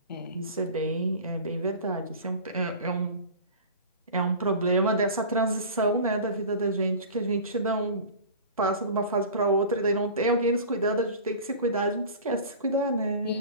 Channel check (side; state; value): both; inverted; correlation -0.37